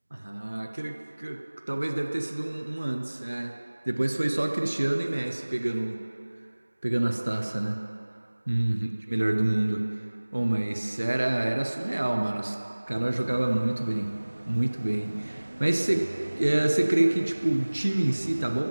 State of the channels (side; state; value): both; inverted; correlation -1.00